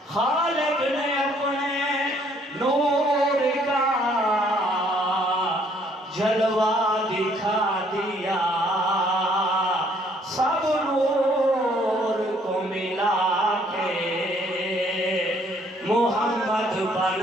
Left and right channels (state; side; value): normal; both; correlation 0.64